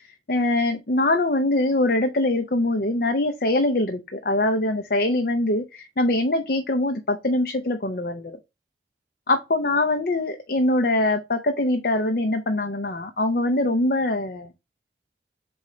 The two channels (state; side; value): normal; both; correlation 0.15